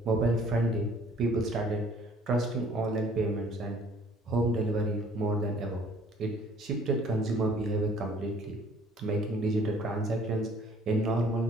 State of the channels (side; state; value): both; normal; correlation 0.56